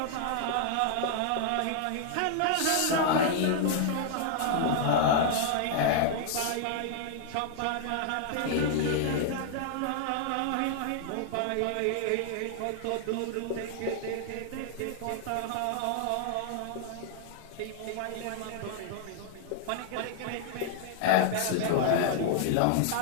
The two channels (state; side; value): different; both; correlation 0.00